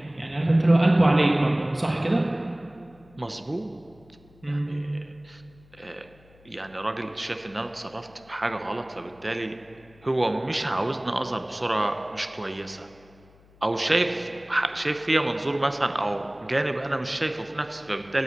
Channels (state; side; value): noise; left; hum, 27 dB below the sound